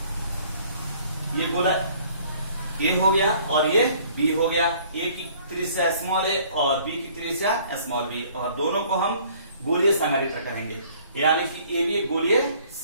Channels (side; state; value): both; inverted; correlation -0.57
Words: गोला ए हो गया और ये बी हो गया। ए की त्रिज्या स्मॉल ए और बी की त्रिज्या स्मॉल बी, और दोनों को हम गोलीय संधारित्र कहेंगे। यानी कि ए भी एक गोलीय